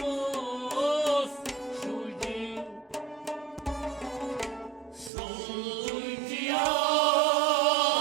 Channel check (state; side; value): drops out; left; at 5.1 s